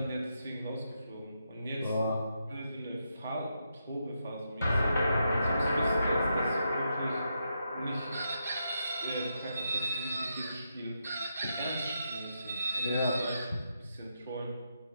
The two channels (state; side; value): inverted; both; correlation -0.82